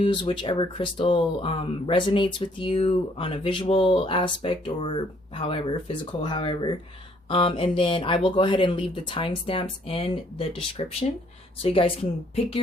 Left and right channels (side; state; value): both; normal; correlation 0.64